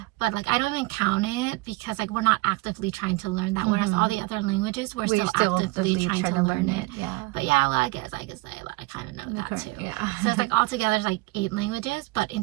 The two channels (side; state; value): left; quieter; 22.6 dB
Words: but like I don't even count it, because like we're not actively trying to learn that, whereas all the other languages we're still actively trying to learn it. But well, I guess I could say that I kind of know that too. So it's like altogether it's like 8 languages, but in